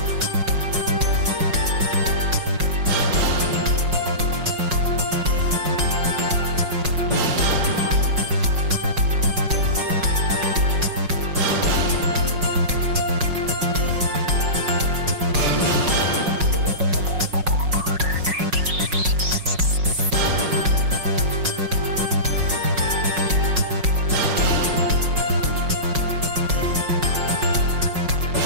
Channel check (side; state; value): left; late; 5.5 ms